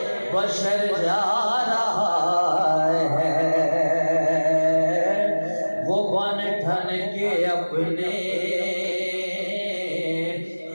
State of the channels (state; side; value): inverted; both; correlation -1.00